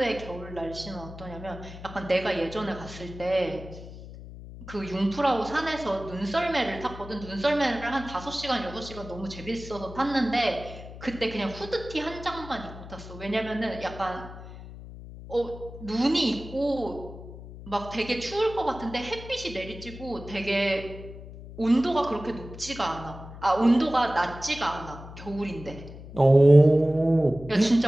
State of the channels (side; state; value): left; noise; hum, 14 dB below the sound